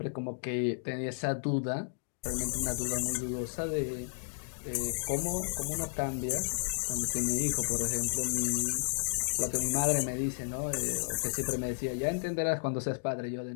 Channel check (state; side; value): silent; right; digital silence